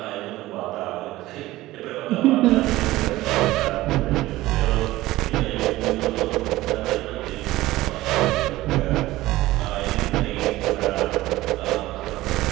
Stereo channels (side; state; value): left; quieter; 17.2 dB